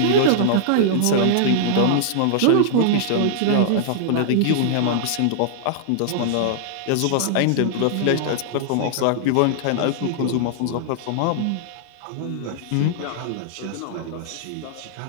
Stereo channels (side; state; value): both; different; correlation -0.01